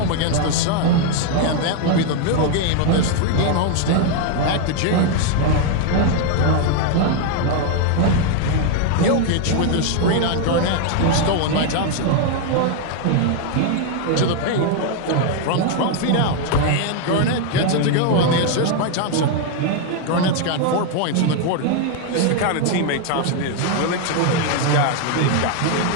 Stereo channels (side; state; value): both; different; correlation 0.01